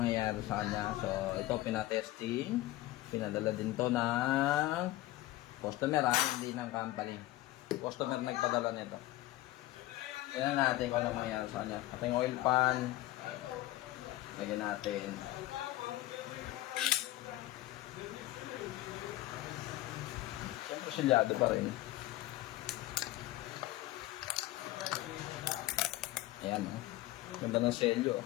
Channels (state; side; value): quieter; right; 16.7 dB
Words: sa kanya. So, ito pinatesting. Pinadala din to ng customer, hindi ng company. Customer nagpadala nito. Tingnan natin kung ano mangyayari sa kanya. Ito yung oil pan. Lagyan natin. Siyempre silyado pa rin. Ayan, oh. Ganda ng selyo.